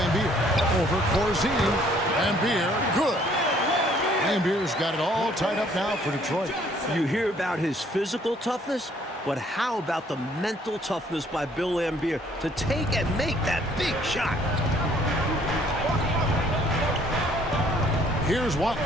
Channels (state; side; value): normal; both; correlation 0.61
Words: Over Corzine. Lambier, good. Lambier's got it all tied up now for Detroit. You hear about his physical toughness, but how about the mental toughness by Bill Lambier to take and make that big shot? Here's